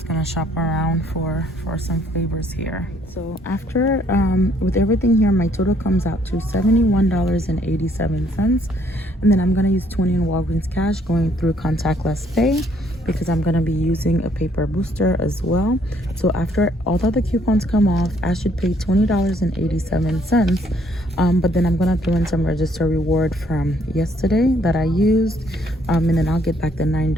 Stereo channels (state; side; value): normal; both; correlation 0.66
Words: gonna shop around for some flavors here. So after with everything here, my total comes out to $71.87, and then I'm gonna use 20 in Walgreens cash going through contactless pay, because I'm gonna be using a paper booster as well. So after all of the coupons come off, I should pay $20.87. But then I'm gonna throw in some register reward from yesterday that I used, and then I'll get back the